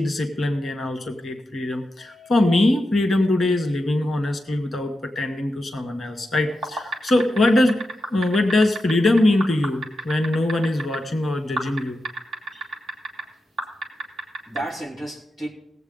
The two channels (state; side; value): normal; both; correlation 0.89